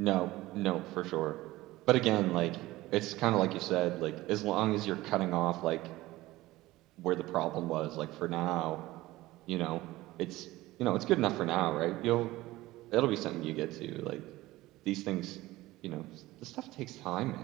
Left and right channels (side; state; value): left; quieter; 18.0 dB